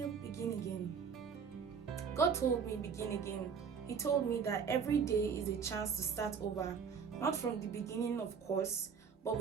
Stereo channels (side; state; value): left; quieter; 6.4 dB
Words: Begin again. God told me begin again. He told me that every day is a chance to start over, Not from the beginning, of course, but